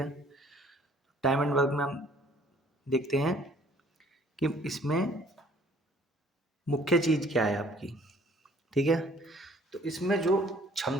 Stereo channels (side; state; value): both; normal; correlation 0.57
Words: टाइम एंड वर्क में हम देखते हैं कि इसमें मुख्य चीज़ क्या है आपकी। ठीक है, तो इसमें जो